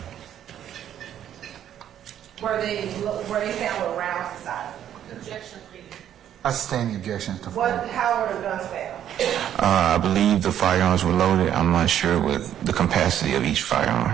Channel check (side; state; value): left; quieter; 10.5 dB